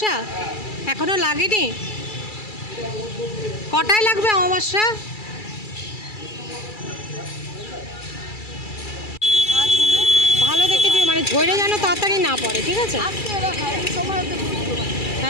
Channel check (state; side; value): late; right; 2.3 ms